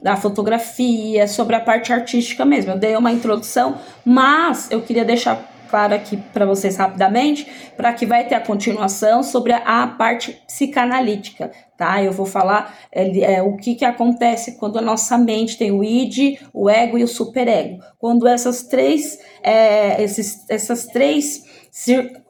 da fotografia, sobre a parte artística mesmo. Eu dei uma introdução, mas eu queria deixar claro aqui para vocês rapidamente, para que vai ter a continuação sobre a parte psicanalítica, tá? Eu vou falar o que acontece quando a nossa mente tem o id, o ego e o superego. Quando essas três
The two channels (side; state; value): both; identical; correlation 1.00